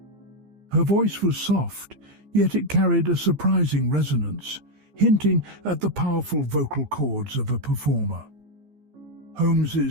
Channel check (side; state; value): left; late; 15 ms